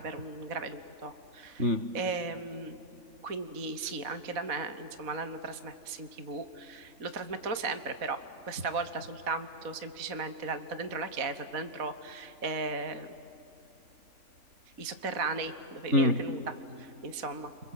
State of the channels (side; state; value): left; late; 4.0 ms